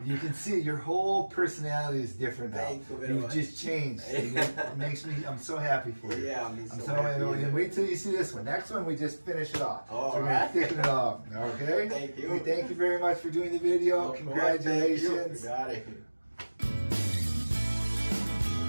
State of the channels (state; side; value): inverted; both; correlation -1.00